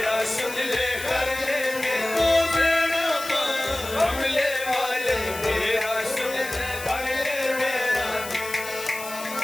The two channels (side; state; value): left; noise; hiss, 11 dB below the sound